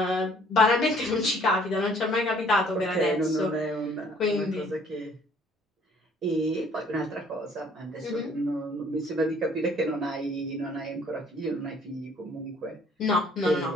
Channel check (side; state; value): both; normal; correlation 0.58